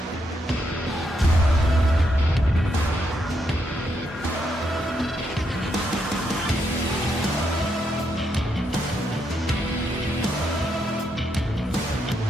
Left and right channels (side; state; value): both; normal; correlation 0.79